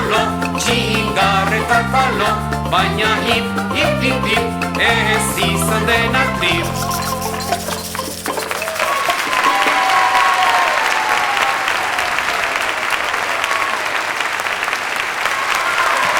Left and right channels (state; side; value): identical; both; correlation 1.00